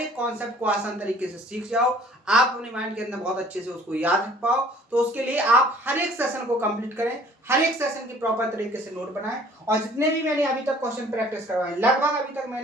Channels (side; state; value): both; normal; correlation 0.54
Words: कॉन्सेप्ट को आसान तरीके से सीख जाओ, आप अपने माइंड के अंदर बहुत अच्छे से उसको याद रख पाओ। तो उसके लिए आप हर एक सेशन को कंप्लीट करें, हर एक सेशन की प्रॉपर तरीके से नोट बनाएं। और जितने भी मैंने अभी तक क्वेश्चन प्रैक्टिस करवाए, लगभग अभी तक